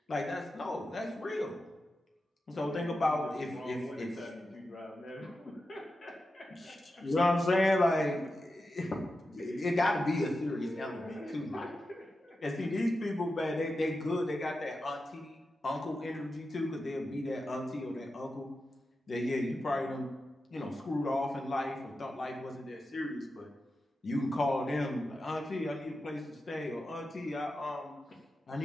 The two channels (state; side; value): normal; both; correlation 0.91